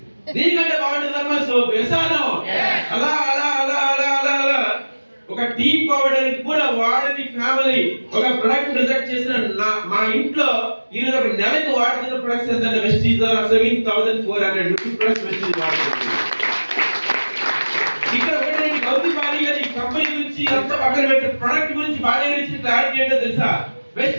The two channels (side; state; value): both; inverted; correlation -1.00